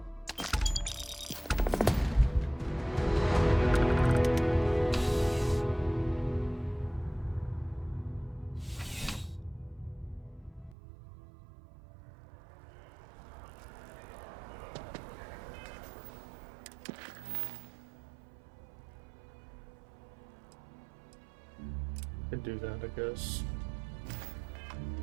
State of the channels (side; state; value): left; drops out; at 10.8 s